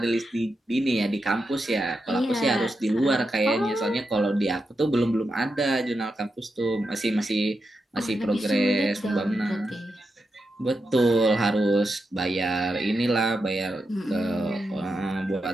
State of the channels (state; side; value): normal; both; correlation 0.87